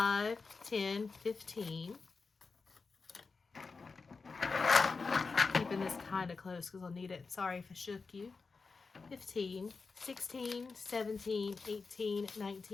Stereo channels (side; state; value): right; quieter; 4.4 dB